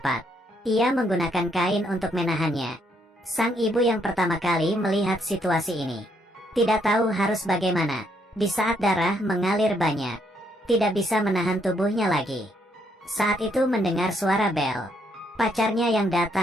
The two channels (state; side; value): normal; both; correlation 0.73